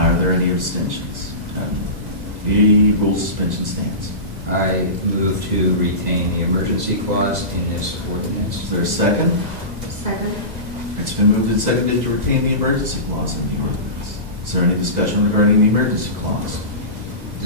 there any abstentions? None. The rule suspension stands. I move to retain the emergency clause in this ordinance. Is there a second? Second. It's been moved and seconded to retain the emergency clause in the ordinance. Is there any discussion regarding the emergency clause?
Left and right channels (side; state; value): left; late; 2.0 ms